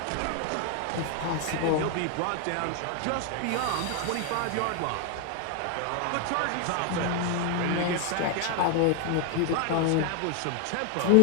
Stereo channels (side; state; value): both; different; correlation 0.01